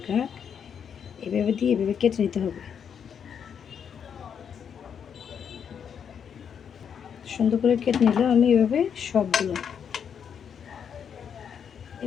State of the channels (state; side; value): quieter; right; 7.6 dB